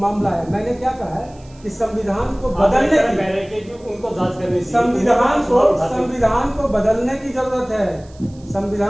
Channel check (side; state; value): right; noise; hiss, 28 dB below the sound